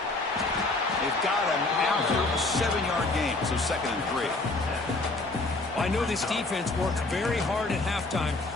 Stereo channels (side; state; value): right; quieter; 3.1 dB